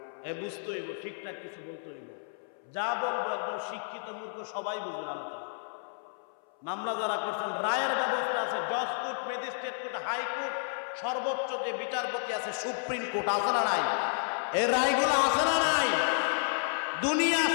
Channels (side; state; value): right; silent; 57 dB below the other